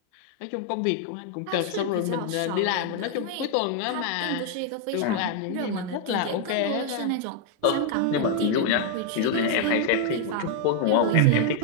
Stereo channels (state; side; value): different; both; correlation 0.00